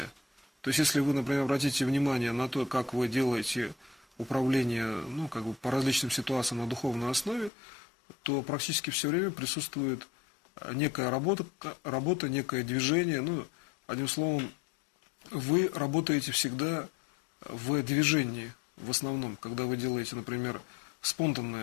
То есть, если вы, например, обратите внимание на то, как вы делаете управление, ну, как бы по различным ситуациям на духовной основе, то практически все время присутствует некая работа, некое движение. Ну, одним словом, вы работаете всегда в движении, в основном, когда вы делаете, например,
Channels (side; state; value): right; drops out; at 7.5 s